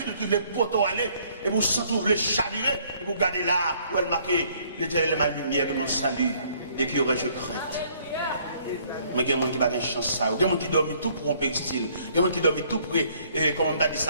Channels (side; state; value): both; inverted; correlation -0.63